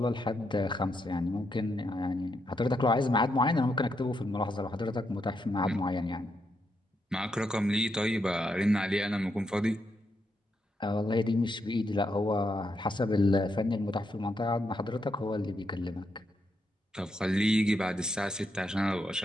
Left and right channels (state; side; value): normal; both; correlation 0.80